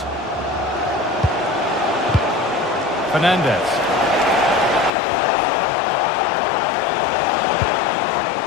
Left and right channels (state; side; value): drops out; right; at 4.9 s